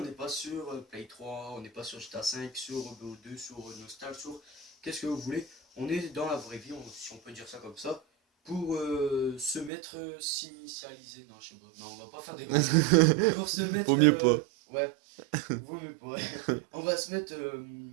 n'est pas sur Play 3, on n'est pas sur GTA 5, sur BO2, sur Nostal, sur qu'est-ce que vous voulez. On est dans la vraie vie, si on peut dire ça comme ça, pour se mettre s'initialiser. Non, je sais pas, non, on va pas faire des pour se mettre. Vaut mieux pas. Ouais, vaut mieux pas. Ouais. On va se mettre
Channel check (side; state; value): left; drops out; at 9.7 s